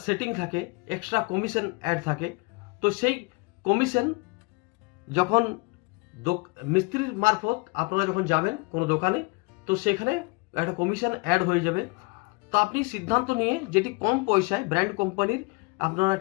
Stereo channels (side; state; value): right; quieter; 27.1 dB